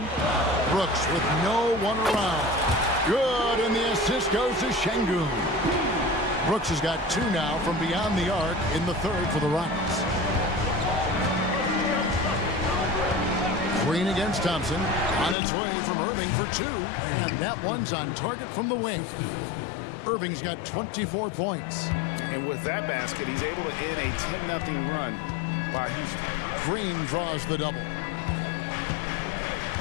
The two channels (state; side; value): drops out; right; at 15.4 s